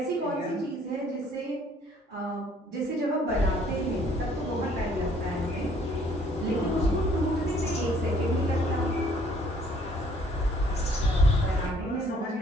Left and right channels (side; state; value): both; normal; correlation 0.61